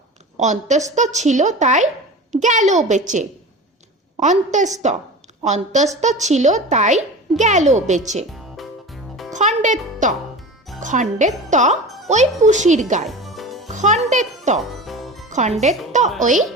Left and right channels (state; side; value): normal; both; correlation 0.33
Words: অন্তস্থ ছিল তাই গেল বেঁচে। অন্তস্থ অন্তস্থ ছিল তাই গেল বেঁচে। খণ্ডেত্ব খণ্ডেত্ব ওই পুষির গায়। খণ্ডেত্ব খণ্ডেত্ব ওই